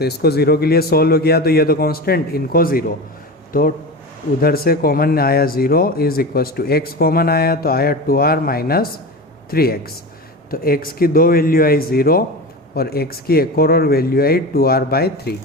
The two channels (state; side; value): normal; both; correlation 0.27